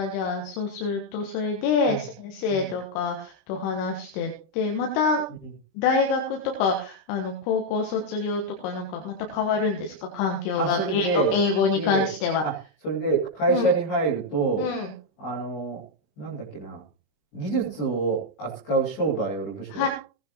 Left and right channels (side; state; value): right; late; 20 ms